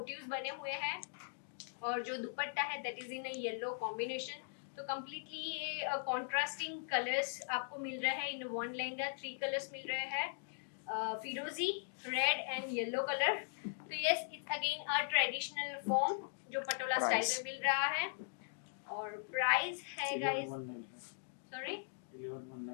बने हुए हैं और जो दुपट्टा है that is in a yellow combination. तो कम्प्लीटली ये कॉन्ट्रास्टिंग कलर्स आपको मिल रहे हैं इन वन लहंगा, 3 कलर्स मिल रहे हैं, फिरोजी, रेड एंड येलो कलर। तो yes it's again a traditional form जो पटोला स्टाइल में मिल रहा है और प्राइस है guys, sorry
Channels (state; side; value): silent; right; digital silence